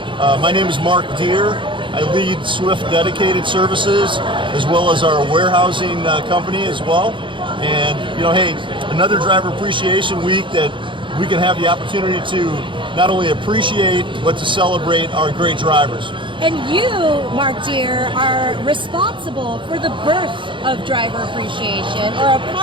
My name is Mark Deere. I lead Swift Dedicated Services as well as our warehousing company as well. And, hey, another driver appreciation week that we can have the opportunity to not only appreciate, but to celebrate our great drivers. And you, Mark Deere, are responsible for the birth of driver appreciation, or a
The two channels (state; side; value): late; left; 0.24 ms